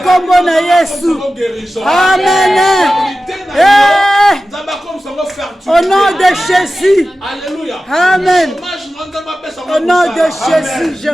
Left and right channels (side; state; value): both; normal; correlation 0.94